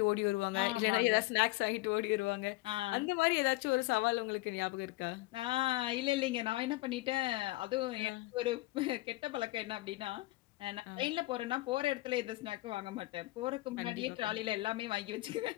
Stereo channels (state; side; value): quieter; right; 20.1 dB